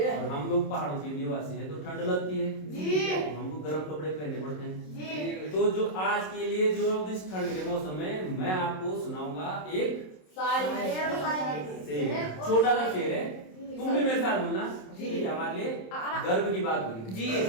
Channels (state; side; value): late; right; 27 ms